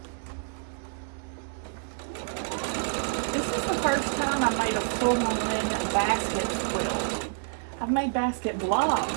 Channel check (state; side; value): silent; left; digital silence